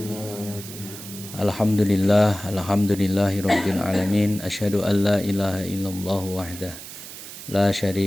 Alhamdulillahirabbil alamin. Asyhadu an la ilaha illallah wahdah la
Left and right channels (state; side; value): noise; right; hiss, 13 dB below the sound